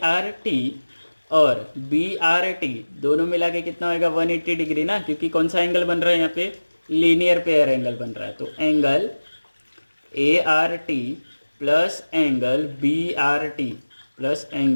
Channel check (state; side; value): inverted; both; correlation -1.00